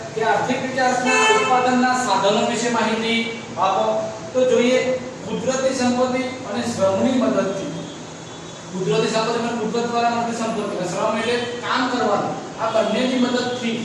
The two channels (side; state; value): both; identical; correlation 1.00